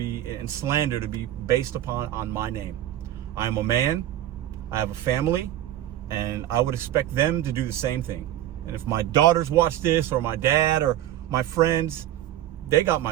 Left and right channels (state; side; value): quieter; left; 12.8 dB